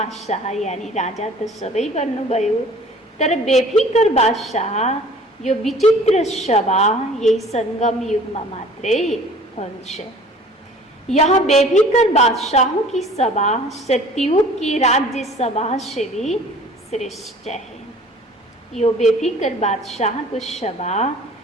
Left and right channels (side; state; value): both; normal; correlation 0.49